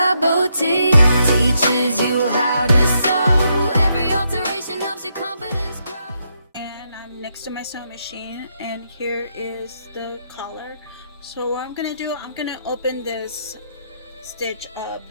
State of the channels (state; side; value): inverted; both; correlation -0.79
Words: Boutique teaches you how to sew. Every alteration helps your confidence grow. And I'm next to my sewing machine, and here is the collar. So what I'm gonna do, I'm gonna open this stitch up